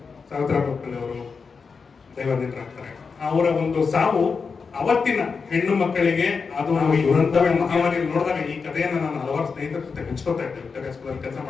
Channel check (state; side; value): quieter; right; 5.2 dB